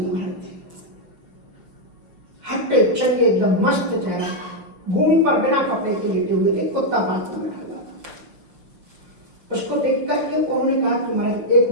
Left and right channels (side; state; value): left; late; 6.3 ms